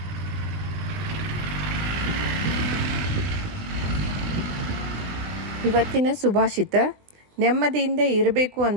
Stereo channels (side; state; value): left; late; 20 ms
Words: ಇವತ್ತಿನ ಸುಭಾಷಿತ: ನೆಮ್ಮದಿಯಿಂದ ಇರಬೇಕು